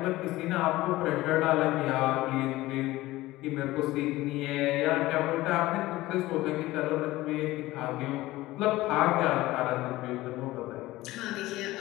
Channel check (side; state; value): right; quieter; 17.9 dB